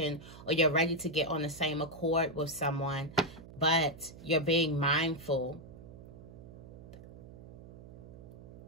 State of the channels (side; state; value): right; noise; hum, 16 dB below the sound